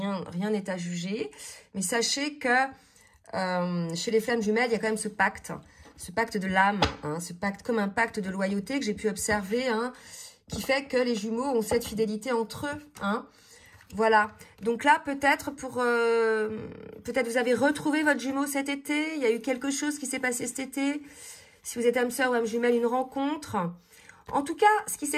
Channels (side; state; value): both; identical; correlation 1.00